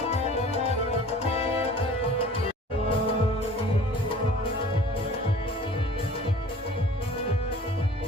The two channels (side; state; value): both; normal; correlation 0.47